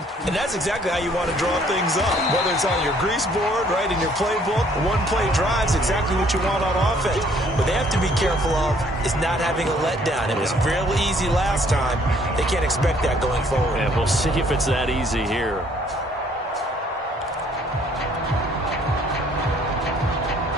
And that's exactly how you want to draw things up. Whether it's on your grease board, right, in your playbook, one-play drive's exactly what you want on offense. What they have to be careful of is not having a letdown. It was real easy last time. They can't expect that going forward. And we'll see if it's that easy here.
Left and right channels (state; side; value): normal; both; correlation 0.62